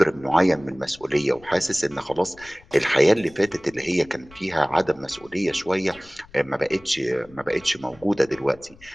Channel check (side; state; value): left; noise; rumble, 25 dB below the sound